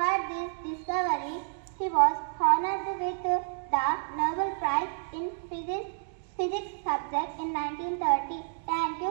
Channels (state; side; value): silent; left; digital silence